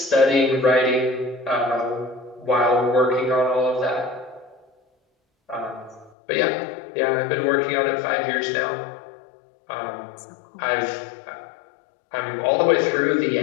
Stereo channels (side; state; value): right; drops out; at 6.1 s